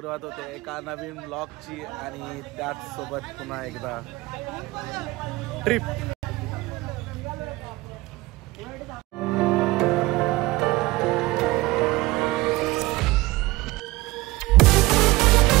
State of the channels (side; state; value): left; quieter; 19.9 dB